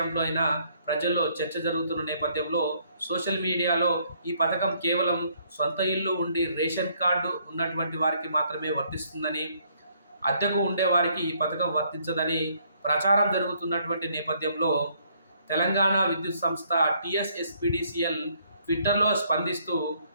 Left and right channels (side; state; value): both; inverted; correlation -0.67